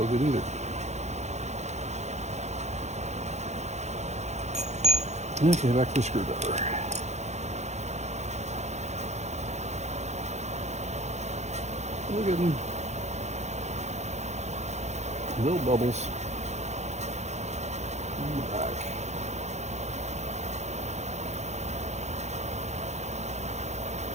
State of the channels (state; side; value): late; left; 0.33 ms